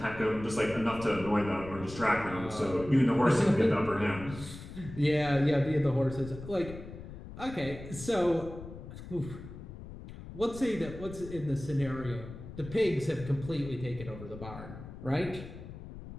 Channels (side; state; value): left; noise; rumble, 13 dB below the sound